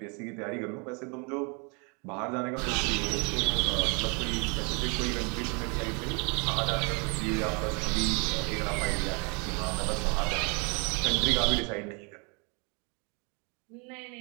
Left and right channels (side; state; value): left; quieter; 33.3 dB